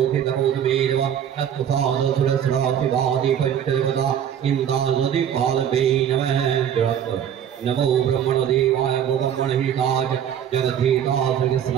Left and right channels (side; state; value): left; quieter; 9.2 dB